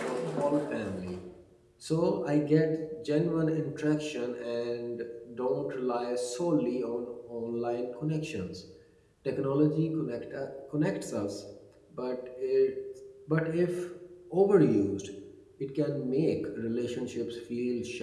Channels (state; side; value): identical; both; correlation 1.00